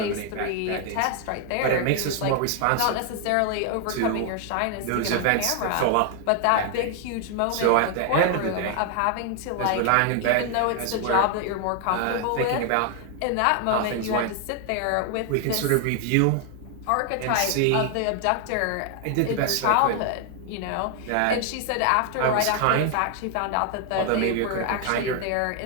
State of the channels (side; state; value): both; different; correlation 0.00